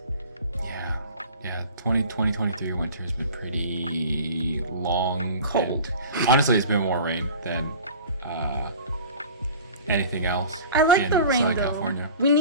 Yeah, 2023 winter has been pretty long. Cold. Honestly, it's been more rain than anything else. I like the rain though. California. We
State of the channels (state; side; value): inverted; both; correlation -0.42